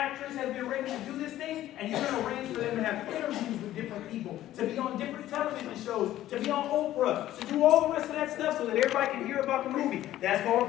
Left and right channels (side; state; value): right; quieter; 13.7 dB